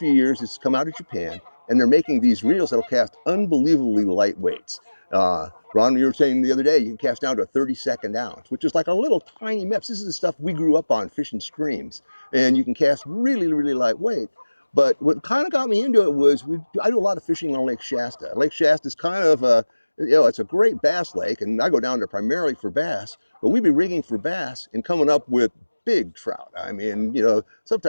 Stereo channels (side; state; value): both; inverted; correlation -1.00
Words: years, it's come out of Japan, and they're making these reels that'll cast unbelievably light weights. Ron, you were saying the other day, you can cast down to a 32nd ounce, which is like a little tiny meps. This is the stuff we grew up on fishing streams. And you can cast really, really lightweight. But what kind of got me into it was I do a lot of fishing on Lake Shasta. Lake Shasta is kind of it's a great bass lake, and I go down there primarily for bass, but we'd be rigging for bass and coming up with big trout. I mean,